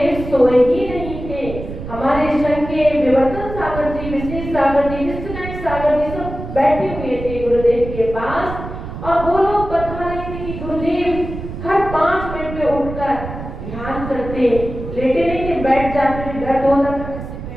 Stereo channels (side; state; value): right; noise; rumble, 9 dB below the sound